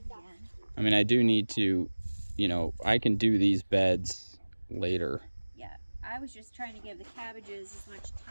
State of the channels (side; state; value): both; inverted; correlation -1.00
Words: I mean, I do need to, I can do these beds later. Yeah, I was just trying to give the cabbages as much